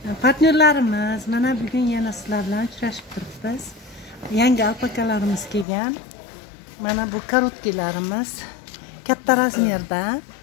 Partnerlarimiz mana bugun yana sizlar bilan uchrashib turibmiz. Yangi alpakalarimiz kelgan. Mana bu korotkilarimiz katta razmerda,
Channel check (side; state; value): right; drops out; at 5.7 s